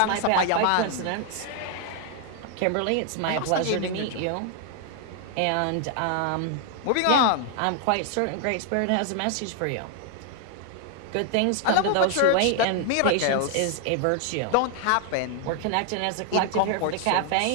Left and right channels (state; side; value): different; both; correlation 0.00